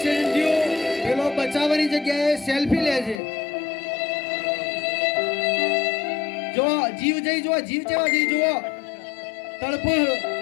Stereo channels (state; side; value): drops out; right; at 3.2 s